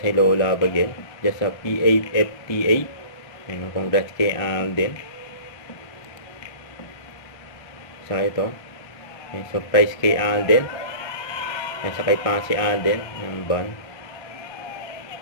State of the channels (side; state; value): right; late; 1.6 ms